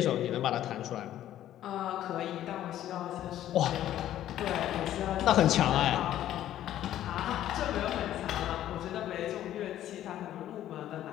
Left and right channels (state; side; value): quieter; right; 12.4 dB